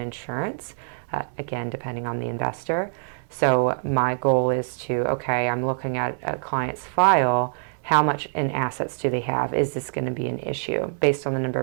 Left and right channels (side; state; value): left; silent; digital silence